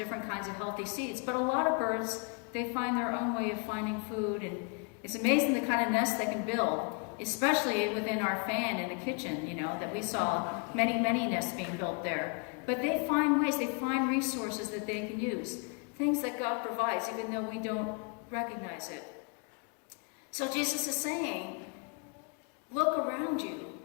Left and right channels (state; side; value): quieter; right; 36.6 dB